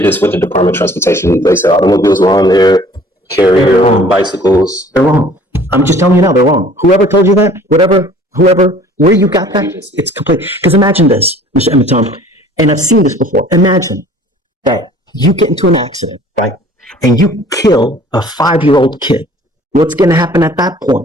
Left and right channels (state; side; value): normal; both; correlation 0.51